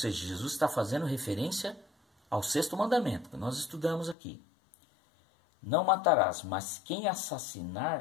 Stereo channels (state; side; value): drops out; right; at 4.2 s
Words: Jesus está fazendo referência ao 6º mandamento, que nós estudamos aqui. Não matarás, mas quem